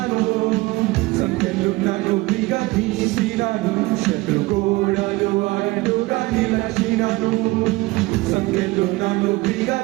సంఖ్యలు నన్ను విగదీసినను, శత్రుగోడలు అడ్డుగా నిలచినను. సంఖ్యలు నన్ను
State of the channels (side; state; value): left; quieter; 21.5 dB